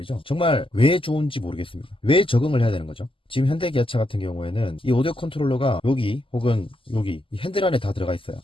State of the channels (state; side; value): late; right; 0.25 ms